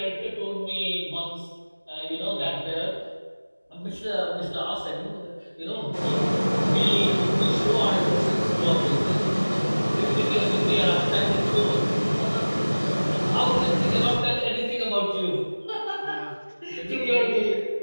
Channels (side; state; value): both; inverted; correlation -1.00